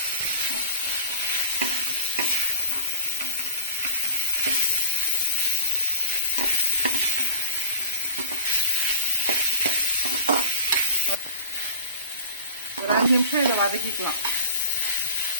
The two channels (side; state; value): both; inverted; correlation -0.38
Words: ஒரு 5 நிமிஷம் இதை வதக்கிக்கலாம்.